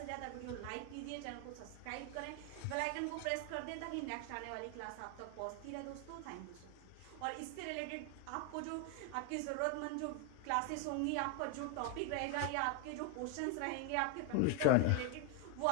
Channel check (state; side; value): different; both; correlation 0.01